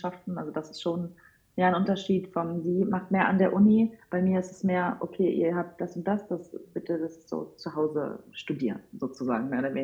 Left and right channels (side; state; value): both; identical; correlation 1.00